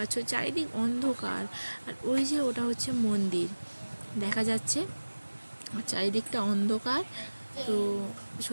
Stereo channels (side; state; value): both; inverted; correlation -1.00